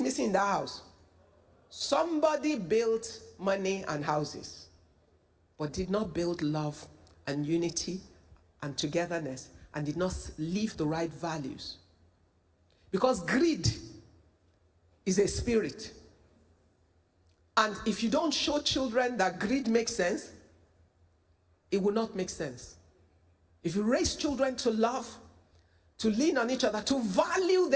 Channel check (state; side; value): identical; both; correlation 1.00